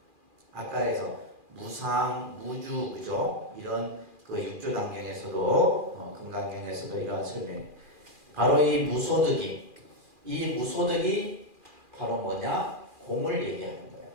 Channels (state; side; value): late; left; 2.4 ms